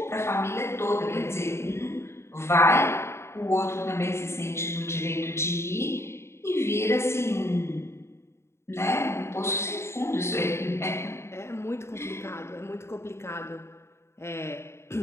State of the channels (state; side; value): late; right; 0.13 ms